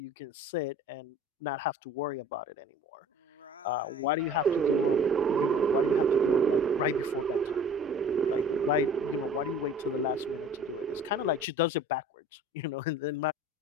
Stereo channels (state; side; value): normal; both; correlation 0.46